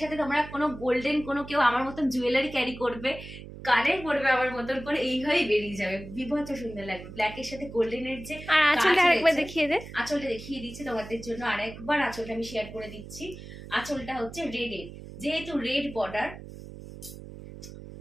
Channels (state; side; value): noise; right; hum, 14 dB below the sound